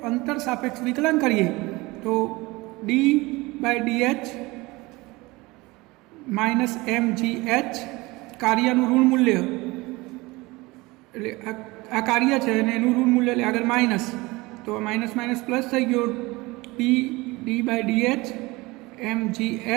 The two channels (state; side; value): quieter; left; 22.3 dB